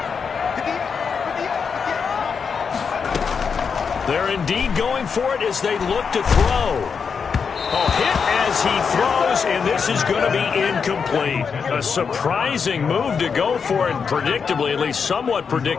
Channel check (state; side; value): quieter; right; 6.0 dB